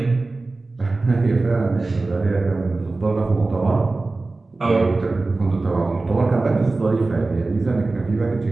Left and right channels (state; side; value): quieter; left; 3.4 dB